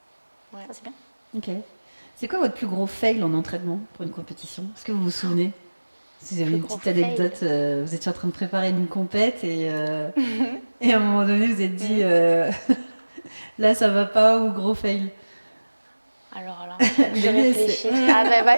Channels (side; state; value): both; inverted; correlation -1.00